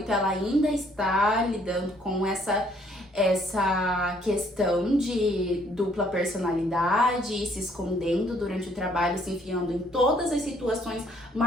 ela ainda está lidando com essa questão de dupla personalidade e se escondendo durante o trabalho, se enfiando em todas as situações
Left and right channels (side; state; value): both; normal; correlation 0.64